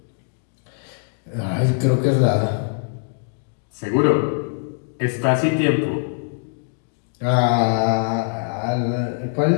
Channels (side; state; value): right; silent; digital silence